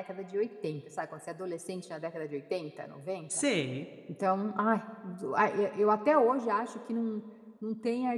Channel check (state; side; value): identical; both; correlation 1.00